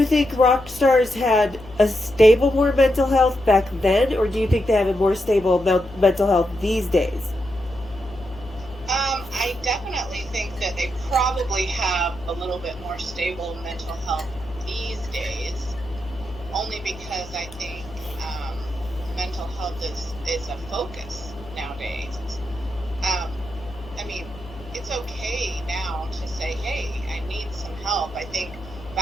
think rock stars had a stable more mental health back then, or do you think they have a more stable mental health these days? I definitely think that they probably have a little bit more stable mental health these days, only because I think mental health is a focus nowadays. I mean, it's okay now to say, hey, I need some help. I think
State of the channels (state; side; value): noise; left; hum, 17 dB below the sound